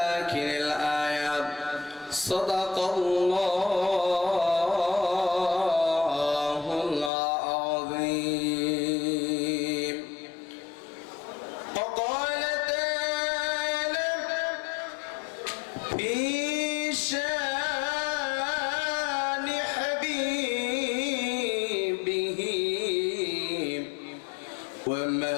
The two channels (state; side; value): drops out; right; at 7.1 s